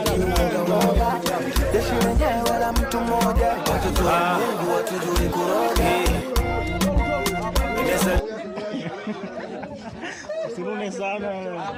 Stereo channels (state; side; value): identical; both; correlation 1.00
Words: moja moja. Jeshi wenyewe wala mtu moja, watoto wa Mungu watujui kuroga. Usirume sana.